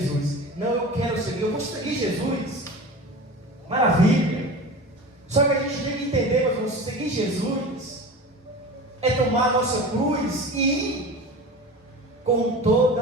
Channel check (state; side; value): normal; both; correlation 0.33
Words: Não, eu quero seguir, eu vou seguir Jesus. Maravilha. Só que a gente tem que entender, meu irmão, seguir Jesus é tomar a nossa cruz e ir com toda